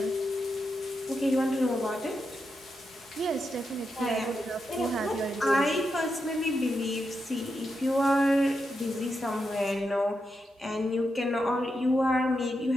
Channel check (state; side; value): normal; both; correlation 0.86